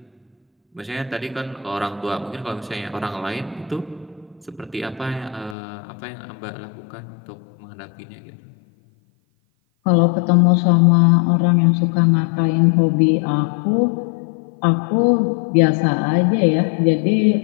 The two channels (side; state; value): right; drops out; at 5.6 s